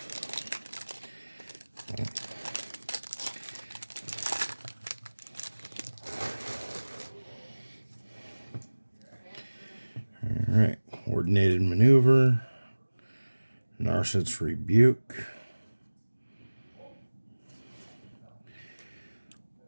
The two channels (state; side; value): inverted; both; correlation -1.00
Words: Alright, Coordinated Maneuver, Narset's Rebuke,